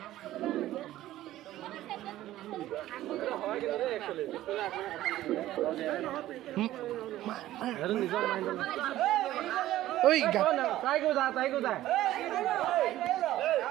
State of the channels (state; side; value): quieter; left; 14.5 dB